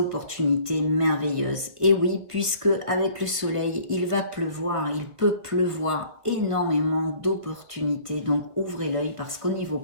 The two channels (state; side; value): late; left; 1.5 ms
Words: merveilleuses. Et oui, puisque avec le soleil, il va pleuvoir, il peut pleuvoir énormément d'opportunités. Donc ouvrez l'œil parce qu'au niveau